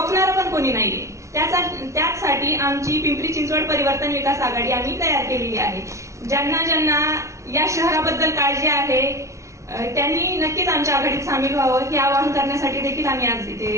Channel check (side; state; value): left; late; 0.14 ms